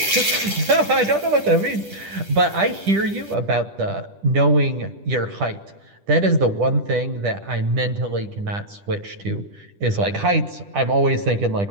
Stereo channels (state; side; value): late; left; 10 ms